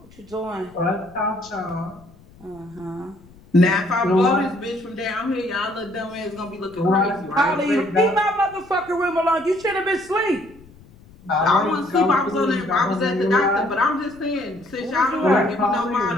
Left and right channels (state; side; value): noise; left; rumble, 24 dB below the sound